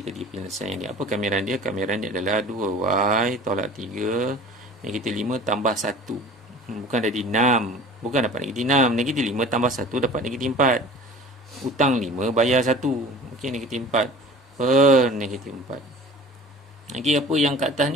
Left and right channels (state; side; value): normal; both; correlation 0.43